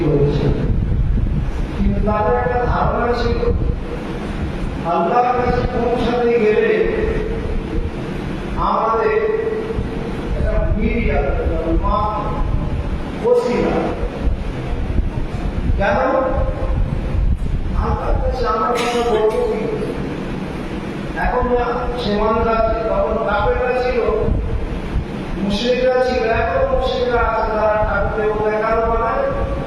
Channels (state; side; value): identical; both; correlation 1.00